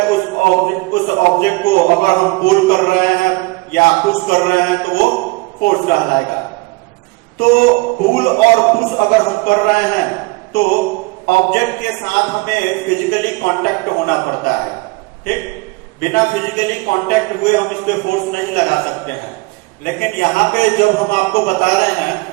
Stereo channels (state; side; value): quieter; left; 24.8 dB